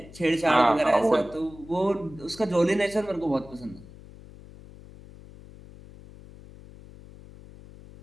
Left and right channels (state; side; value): noise; left; hum, 19 dB below the sound